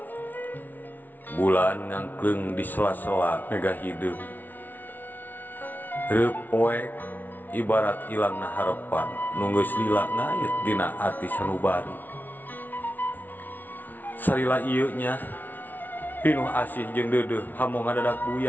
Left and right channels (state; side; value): late; right; 0.084 ms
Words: Bulan ngangkleng di sela-sela mega hidup. Reup poek ibarat ilangna harapan nunggeus lila ngayet dina ati sanubari. Salila ieu nya pinuh asih jeung deudeuh hamong ngadadak